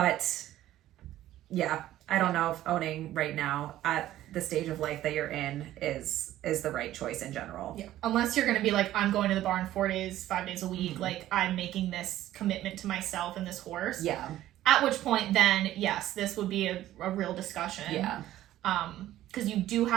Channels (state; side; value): quieter; left; 13.8 dB